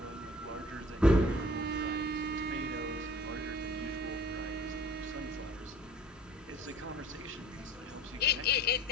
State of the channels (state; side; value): normal; both; correlation 0.50